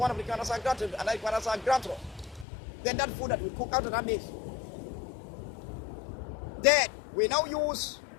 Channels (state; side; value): drops out; right; at 2.5 s